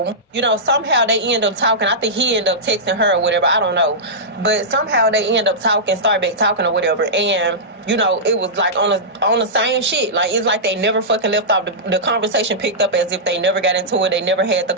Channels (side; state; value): both; normal; correlation -0.14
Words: you know, somehow they end up talking. I think he ended up texting her or whatever, I don't know. But somehow they end up talking, start back talking or whatever, and, you know, it was like on the same shit. Like, it's like they never fucking left off. The conversation picked up as if they never got into it. They never had the